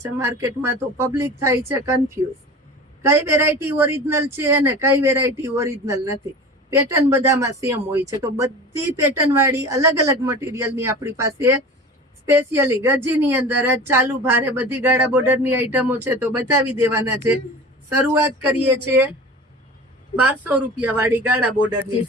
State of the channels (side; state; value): both; normal; correlation 0.36